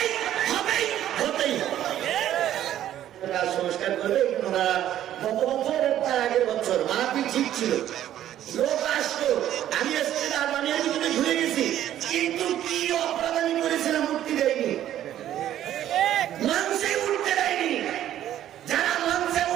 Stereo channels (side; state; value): left; quieter; 11.9 dB